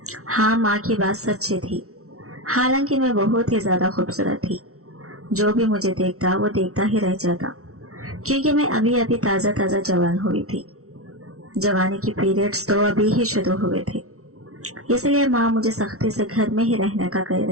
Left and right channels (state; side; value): late; left; 0.64 ms